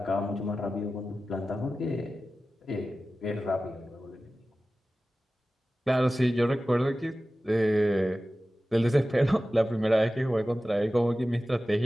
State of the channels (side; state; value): both; normal; correlation 0.95